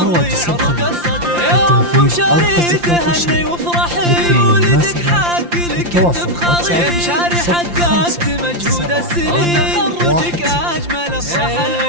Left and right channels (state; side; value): late; left; 5.8 ms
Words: الخبر يا أم مشاري تهني وافرحي ولدك حق لك انت فخري. يا مشاري حققت مجهود السنين تخرجك أجمل